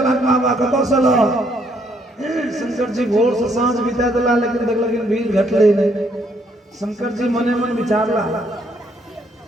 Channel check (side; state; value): both; normal; correlation 0.70